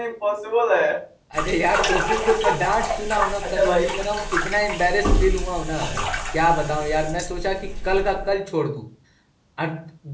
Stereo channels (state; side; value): identical; both; correlation 1.00